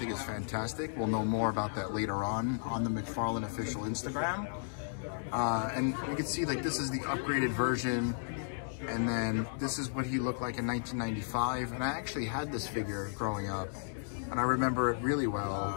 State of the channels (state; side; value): silent; right; digital silence